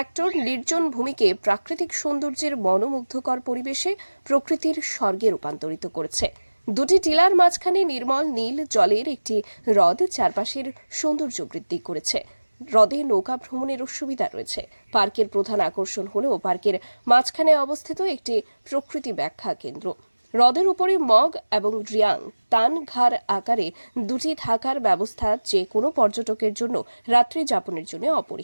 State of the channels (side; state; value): both; inverted; correlation -1.00